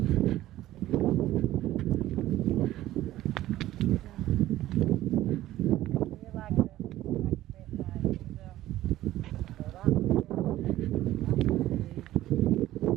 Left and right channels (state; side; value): quieter; left; 14.8 dB